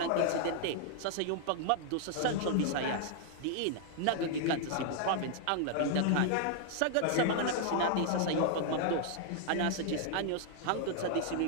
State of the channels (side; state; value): both; different; correlation 0.00